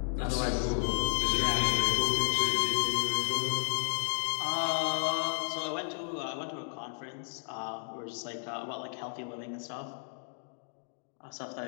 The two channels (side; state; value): right; silent; digital silence